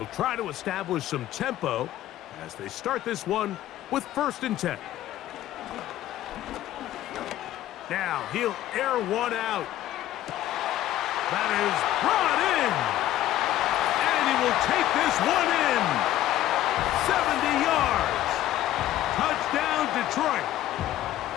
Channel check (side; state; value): right; quieter; 13.6 dB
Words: try to establish some tempo as they start this one with 1st and 10. Now he'll air one out. That is brought in. And he will take this one in. 70 yards. Touchdown, Detroit.